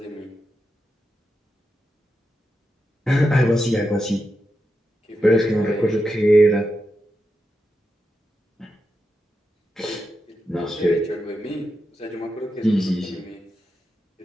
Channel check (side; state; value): both; normal; correlation 0.87